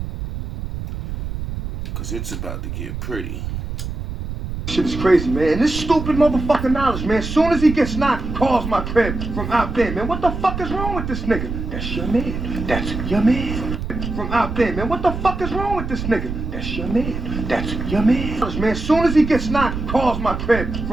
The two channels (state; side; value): noise; right; rumble, 6 dB below the sound